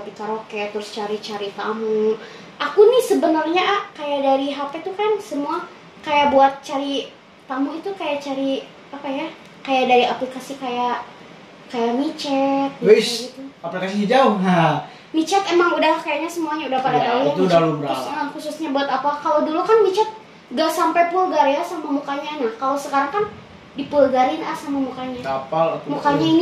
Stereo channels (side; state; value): both; identical; correlation 1.00